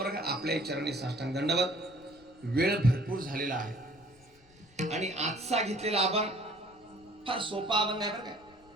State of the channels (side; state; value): left; noise; rumble, 28 dB below the sound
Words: आपल्या चरणी साष्टांग दंडवत. वेळ भरपूर झालेला आहे आणि आजचा घेतलेला अभंग फार सोपा अभंग आहे बरं काय.